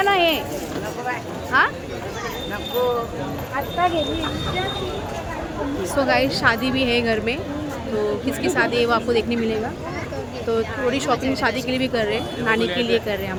ना हे. हाँ सो गाइस शादी भी है घर में, तो किसकी शादी है वो आपको देखने मिलेगा. तो थोड़ी शॉपिंग शादी के लिए भी कर रहे हैं, नानी के लिए कर रहे हैं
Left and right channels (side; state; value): both; identical; correlation 1.00